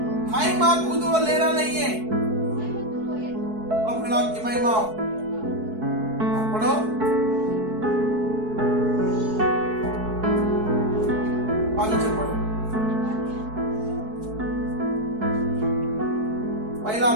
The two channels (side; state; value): left; late; 4.6 ms